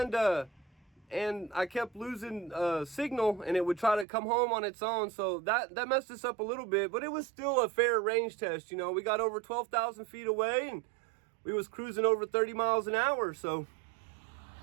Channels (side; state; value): left; drops out; at 4.0 s